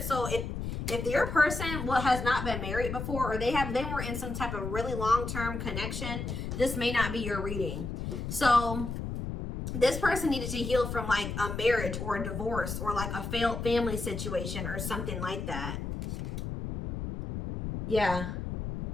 So if your person has not been married before or they were in some type of really long-term connection, this may not be your reading. So this person needed to heal from like a marriage or a divorce or like a failed family situation or something like that. Yeah.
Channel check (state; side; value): noise; left; rumble, 5 dB below the sound